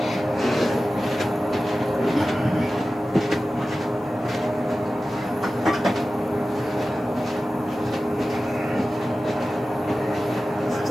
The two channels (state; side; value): normal; both; correlation 0.95